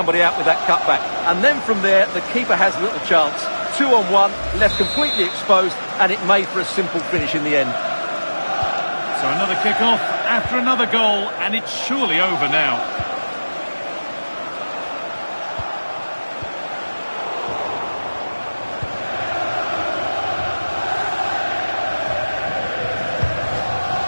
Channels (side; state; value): both; inverted; correlation -1.00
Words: out with that cutback. And then from there, the keeper has little chance. 2-on-1, left completely exposed, and it made for a simple finish in the end. So another kick-off after another goal, and it's surely over now.